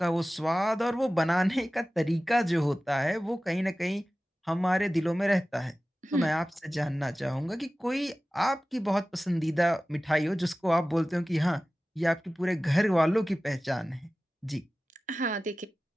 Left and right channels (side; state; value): both; normal; correlation 0.96